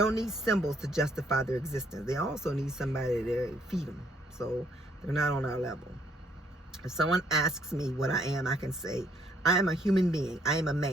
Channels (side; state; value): both; normal; correlation 0.68